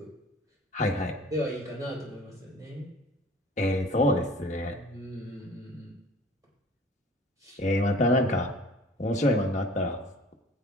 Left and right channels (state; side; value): normal; both; correlation 0.47